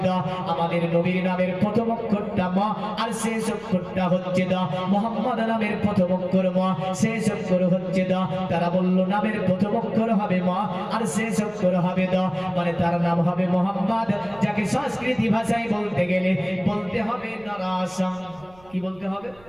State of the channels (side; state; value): right; noise; rumble, 27 dB below the sound